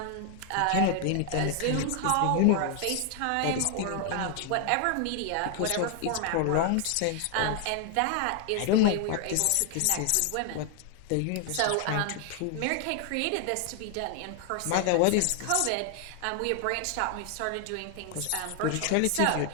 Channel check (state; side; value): different; both; correlation 0.00